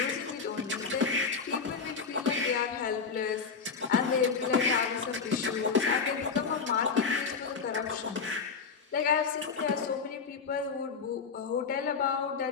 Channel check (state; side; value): quieter; right; 5.4 dB